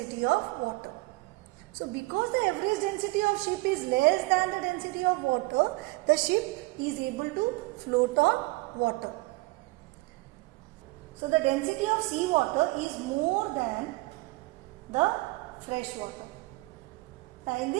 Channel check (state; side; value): quieter; left; 23.1 dB